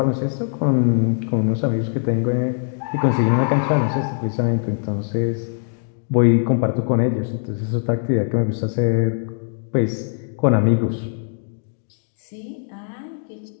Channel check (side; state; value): right; silent; 65 dB below the other